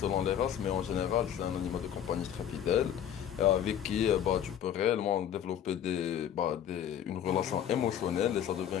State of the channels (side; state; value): right; quieter; 9.7 dB